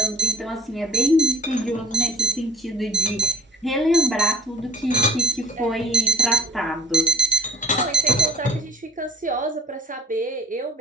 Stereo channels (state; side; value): normal; both; correlation 0.50